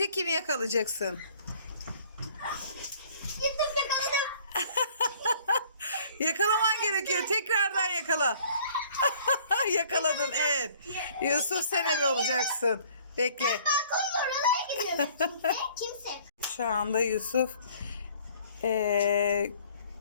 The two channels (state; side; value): inverted; both; correlation -0.56